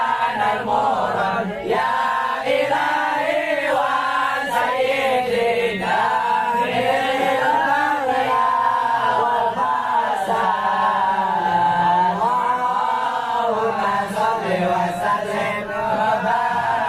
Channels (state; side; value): identical; both; correlation 1.00